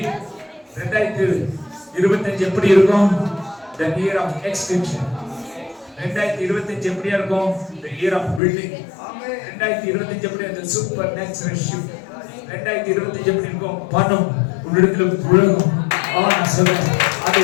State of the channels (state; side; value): drops out; right; at 8.4 s